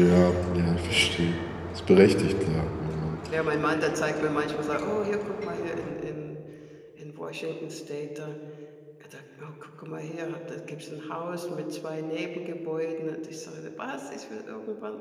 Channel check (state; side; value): identical; both; correlation 1.00